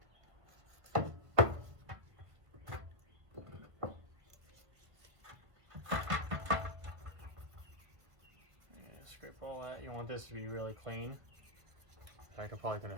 Scrape all that. You want this to be really clean. In fact, I'm probably going to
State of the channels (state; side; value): late; left; 1.7 ms